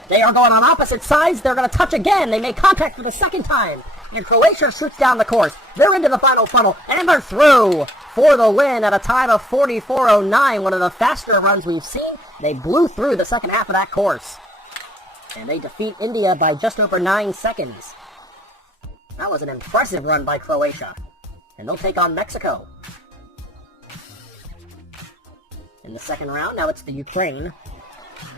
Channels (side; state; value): both; normal; correlation 0.58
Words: They are going on opposite sides. They're going to touch again. They make contact for the second time. And Croatia shoots down the course. They're into the final funnel, and they're through for the win at a time of 44.09, one of the faster runs we've seen. They blew through the second half of that course. And they defeat India by just over 9 seconds. That was an impressive run by Croatia. And they'll take on Mexico. In the second round, now it's the Ukraine.